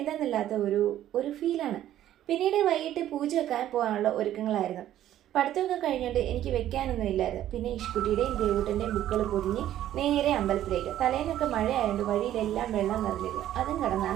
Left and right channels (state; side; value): quieter; left; 12.3 dB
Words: ഒരു ഫീലാണ്. പിന്നീട് വൈകിട്ട് പൂജ വെക്കാൻ പോകാനുള്ള ഒരുക്കങ്ങളായിരുന്നു. പഠിത്തമൊക്കെ കഴിഞ്ഞുകൊണ്ട് എനിക്ക് വെക്കാനൊന്നും ഇല്ലായിരുന്നു. പിന്നെ ഇഷ്കുട്ടിയുടെയും ദേവൂട്ടൻ്റെയും ബുക്കുകൾ പൊതിഞ്ഞ് നേരെ അമ്പലത്തിലേക്ക്. തലേന്നൊക്കെ മഴയായതുകൊണ്ട് വഴിയിലെല്ലാം വെള്ളം നിറഞ്ഞിരുന്നു. അതും